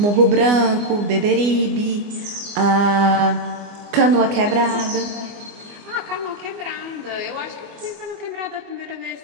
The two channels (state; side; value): late; left; 24 ms